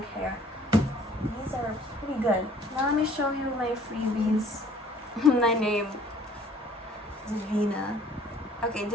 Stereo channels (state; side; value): normal; both; correlation 0.54